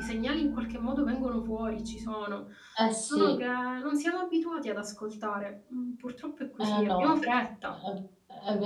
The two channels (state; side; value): identical; both; correlation 1.00